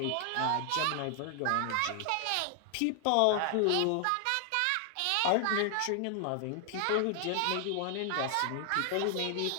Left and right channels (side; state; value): both; different; correlation 0.00